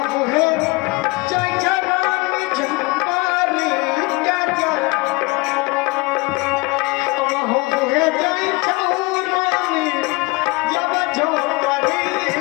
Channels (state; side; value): quieter; right; 24.4 dB